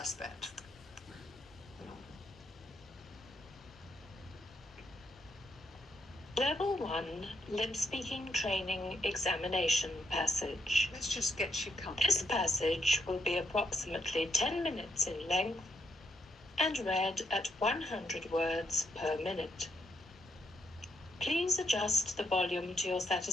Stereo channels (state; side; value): normal; both; correlation 0.77